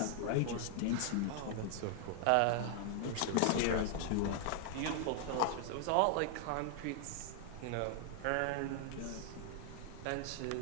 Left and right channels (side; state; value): both; different; correlation 0.00